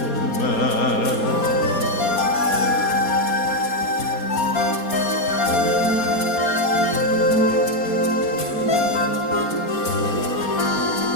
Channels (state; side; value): late; right; 4.2 ms